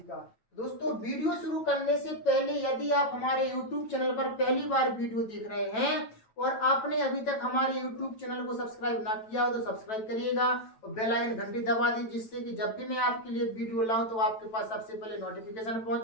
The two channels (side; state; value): right; late; 9.1 ms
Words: का। दोस्तों, वीडियो शुरू करने से पहले यदि आप हमारे YouTube चैनल पर पहली बार वीडियो देख रहे हैं और आपने अभी तक हमारे YouTube चैनल को सब्सक्राइब ना किया हो तो सब्सक्राइब करिएगा और बेल आइकन घंटी दबा दीजिए, जिससे कि जब भी मैं आपके लिए वीडियो लाऊं तो आपके पास सबसे पहले नोटिफिकेशन